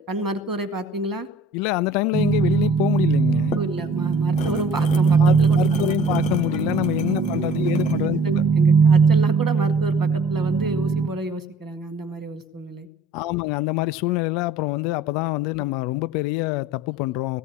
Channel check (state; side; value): normal; both; correlation 0.51